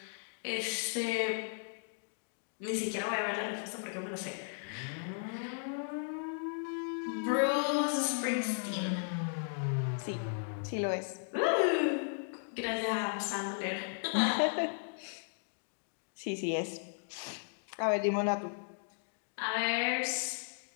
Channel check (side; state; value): right; silent; digital silence